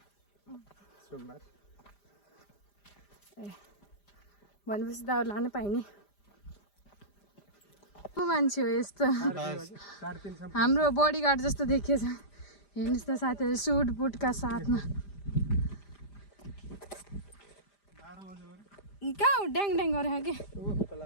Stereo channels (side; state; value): right; late; 5.0 ms